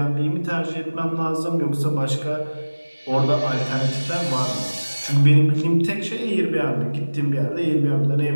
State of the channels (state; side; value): inverted; both; correlation -1.00